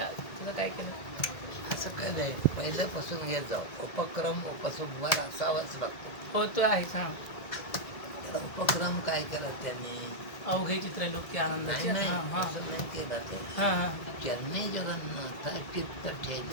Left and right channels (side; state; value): right; late; 2.0 ms